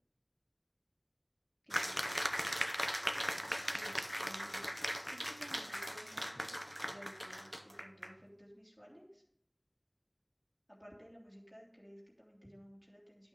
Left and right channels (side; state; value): both; identical; correlation 1.00